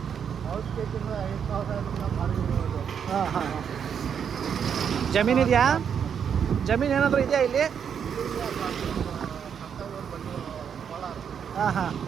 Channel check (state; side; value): quieter; left; 7.6 dB